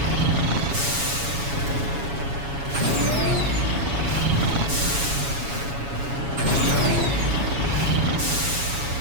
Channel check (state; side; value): late; left; 7.2 ms